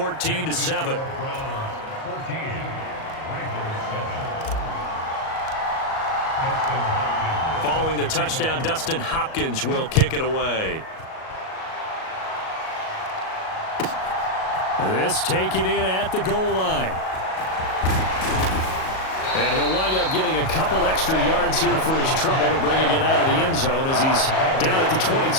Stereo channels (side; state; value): right; late; 37 ms